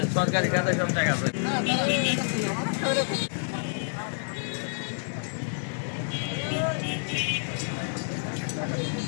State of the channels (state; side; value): silent; right; 59 dB below the other